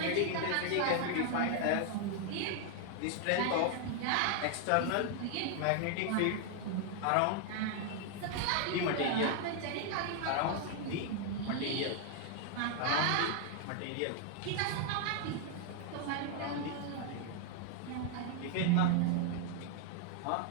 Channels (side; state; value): both; different; correlation 0.00